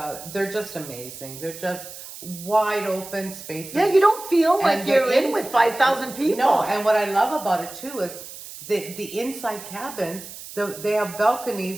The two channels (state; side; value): noise; right; hiss, 13 dB below the sound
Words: they're just amazing. They're just wide open spaces. Yeah, you don't feel like you're in with 5,000 people. No, and what I love about it too is the inside cabins, they have